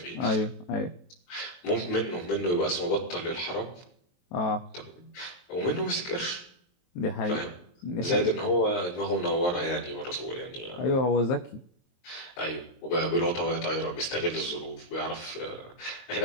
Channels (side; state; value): right; late; 23 ms